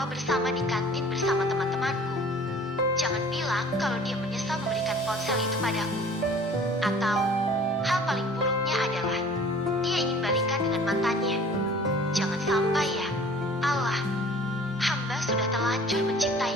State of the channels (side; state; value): both; normal; correlation 0.48